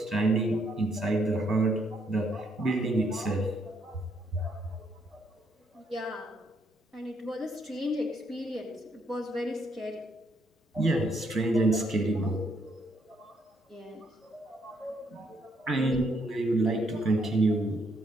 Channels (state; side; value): normal; both; correlation 0.72